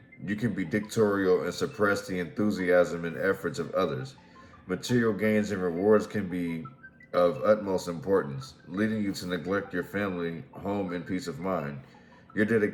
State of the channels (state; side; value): identical; both; correlation 1.00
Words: you can be dictatorial and suppress the enthusiasm and efforts of others. Material gains and rewards can be of utmost importance, leading you to neglect your family, home, and peace of mind. Your